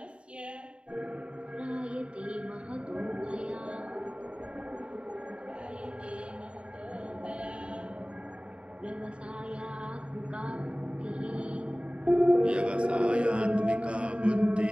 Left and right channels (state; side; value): late; left; 0.056 ms